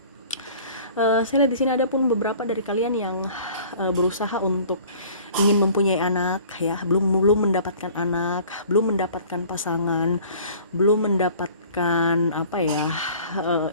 Saya lihat di sini ada pun beberapa dari kalian yang berusaha untuk ingin mempunyai anak ya, belum mendapatkan anak, belum mendapatkan pasangan, belum mendapatkan apa ya,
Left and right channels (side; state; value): both; inverted; correlation -0.49